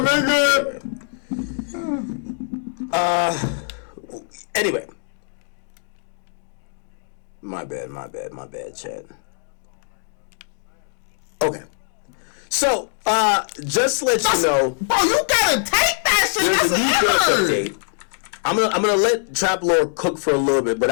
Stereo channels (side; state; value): right; silent; 64 dB below the other